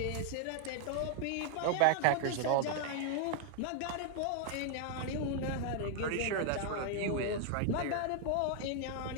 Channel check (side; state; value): both; different; correlation 0.00